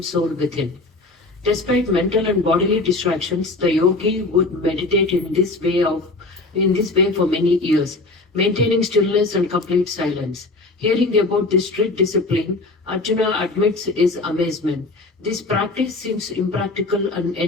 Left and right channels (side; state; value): right; quieter; 3.2 dB